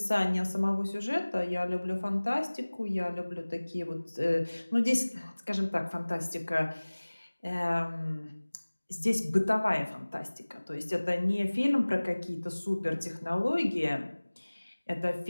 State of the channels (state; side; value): inverted; both; correlation -1.00